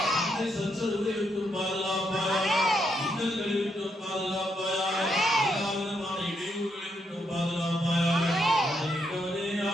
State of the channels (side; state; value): both; normal; correlation 0.78